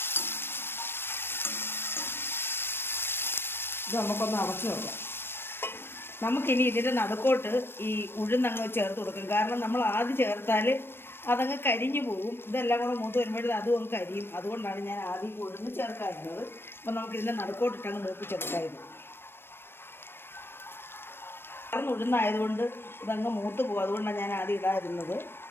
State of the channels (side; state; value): right; late; 0.11 ms